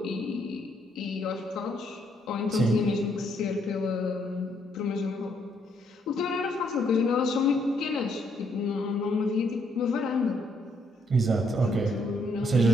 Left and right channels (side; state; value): both; normal; correlation 0.72